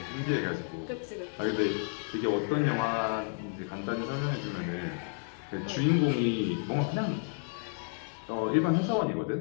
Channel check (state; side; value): silent; right; 57 dB below the other